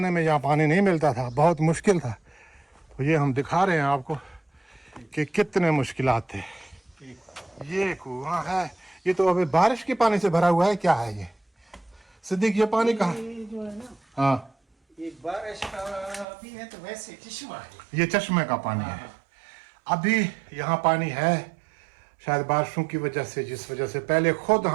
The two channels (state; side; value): drops out; left; at 16.2 s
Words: में यहाँ पानी नहीं मिलता था, बहुत मुश्किल था। तो ये हम दिखा रहे हैं आपको कि कितने मुश्किलात थे। ये कुआं है, ये तो अभी बारिश के पानी से भरा हुआ है। क्या है ये सिद्दीक, ये पानी कहाँ? जो है ना, हाँ, एक बारिश का भी है तो वैसे चश्मा है, ये चश्मे का पानी है। अभी यहाँ पानी है शायद बारिशों की वजह से, जिस वजह से पहले खुद